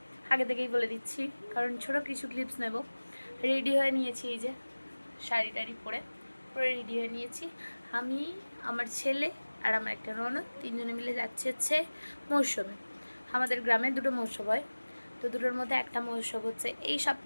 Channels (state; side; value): inverted; both; correlation -1.00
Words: আগে থেকেই বলে দিচ্ছি, কারণ ছোটো কিছু ক্লিপস নেব। রেডি হয়ে নিয়েছি, এই যে শাড়ি টাড়ি পরে পুরো রেডি হয়ে নিয়েছি। আমি, আমার ছেলে আর আমার একটা ননদ, তিনজনে মিলে যাচ্ছি হচ্ছে মৌসুমে। আমাদের গ্রামে দুটো মহোৎসব হয়, তো দুটোর মধ্যে একটা মহোৎসব হচ্ছে এই